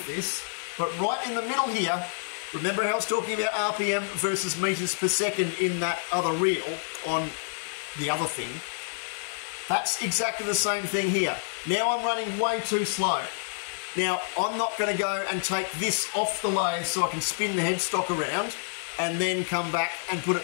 this, but right in the middle here, remember how I was talking about RPM versus meters per second in that other reel on the other thing? That's exactly the same thing here. Now I'm running way too slow. Now I'm not going to go and take this off the lathe so I can spin the headstock around and then come back and put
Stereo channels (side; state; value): right; silent; digital silence